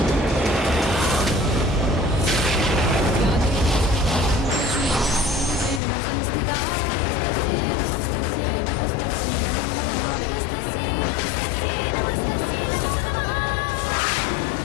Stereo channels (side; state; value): right; drops out; at 5.8 s